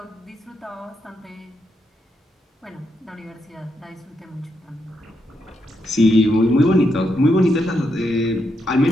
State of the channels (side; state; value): both; normal; correlation 0.81